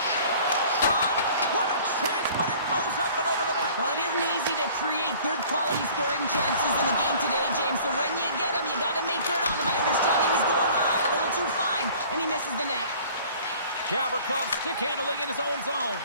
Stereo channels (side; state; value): both; inverted; correlation -0.50